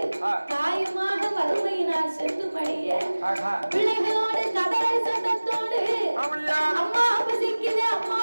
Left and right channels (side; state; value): both; inverted; correlation -1.00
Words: பிள்ளைகளோடு கதறல் சத்தத்தோடு அம்மா பசிக்குதே அம்மா